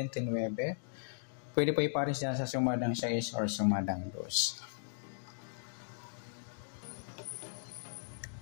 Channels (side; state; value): right; silent; digital silence